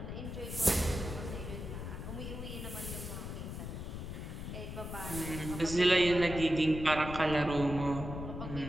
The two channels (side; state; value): left; noise; rumble, 7 dB below the sound